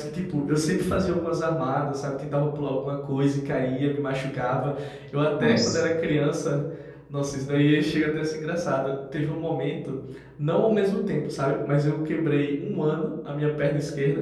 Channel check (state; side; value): identical; both; correlation 1.00